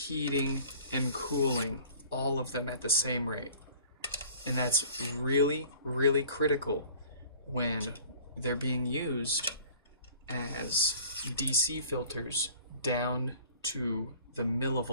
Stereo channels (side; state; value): both; inverted; correlation -0.49